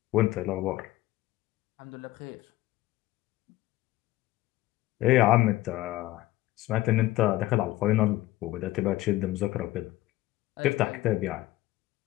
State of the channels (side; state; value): right; quieter; 16.6 dB